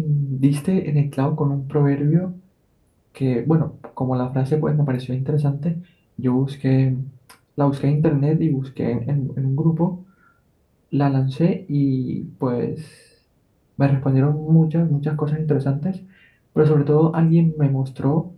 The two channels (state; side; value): identical; both; correlation 1.00